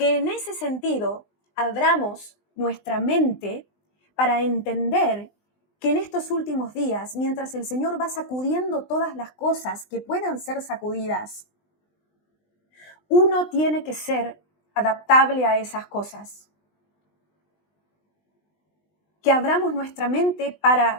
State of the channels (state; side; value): late; right; 20 ms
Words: en ese sentido abramos nuestra mente para entender que en estos últimos días, mientras el Señor va sacudiendo todas las cosas que puedan ser sacudidas, uno tiene que ser adaptable a esas cosas. Que abramos nuestra mente